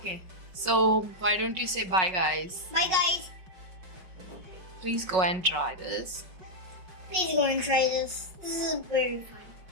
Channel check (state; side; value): late; left; 5.4 ms